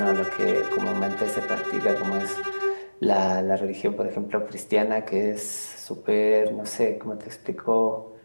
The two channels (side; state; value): both; inverted; correlation -1.00